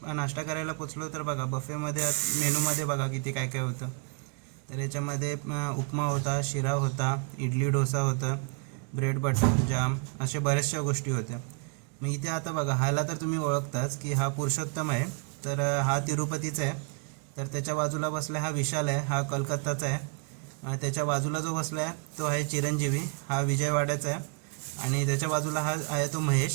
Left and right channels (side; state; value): left; quieter; 34.1 dB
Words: नाश्ता करायला पोचलो तर बघा बफेमध्ये मेनूमध्ये बघा किती काय काय होतं. तर याच्यामध्ये उपमा होता, शिरा होता, इडली डोसा होतं, ब्रेड बटर जाम, असे बऱ्याचशा गोष्टी होत्या. मग इथे आता बघा ह्याला तर तुम्ही ओळखताच की हा पुरुषोत्तम आहे. तर हा तिरुपतीचा आहे. तर त्याच्या बाजूला बसला हा विशाल आहे, हा कलकत्ताचा आहे. त्याच्या बाजूला जो बसला आहे तो आहे चिरंजीवी, हा विजयवाड्याचा आहे. आणि त्याच्या बाजूला हा आहे तो